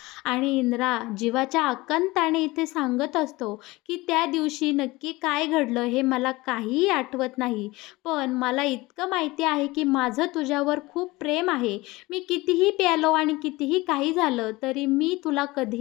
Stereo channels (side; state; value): right; quieter; 21.1 dB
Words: आणि इंद्रा जीवाच्या आकांताने इथे सांगत असतो की त्या दिवशी नक्की काय घडलं हे मला काहीही आठवत नाही. पण मला इतकं माहिती आहे की माझं तुझ्यावर खूप प्रेम आहे. मी कितीही प्यालो आणि कितीही काही झालं तरी मी तुला